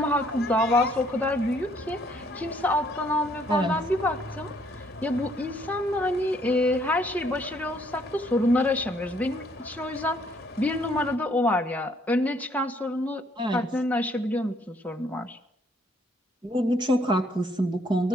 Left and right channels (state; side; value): normal; both; correlation 0.66